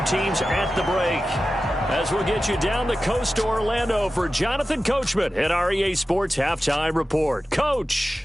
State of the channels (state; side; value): normal; both; correlation 0.94